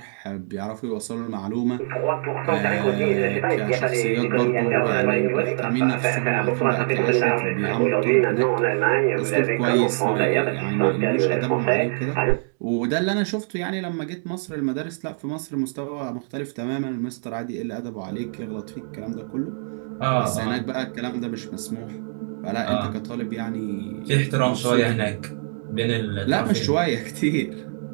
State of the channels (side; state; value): left; silent; digital silence